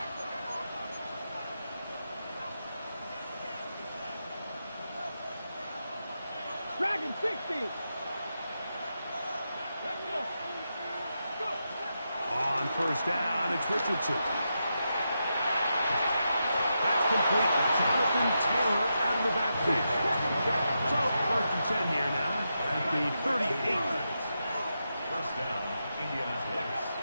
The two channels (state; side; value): inverted; both; correlation -0.86